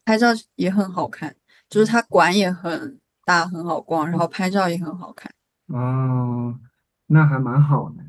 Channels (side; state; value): both; identical; correlation 1.00